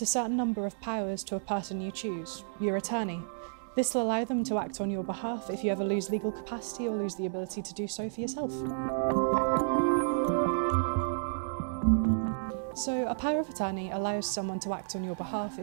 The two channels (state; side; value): silent; left; digital silence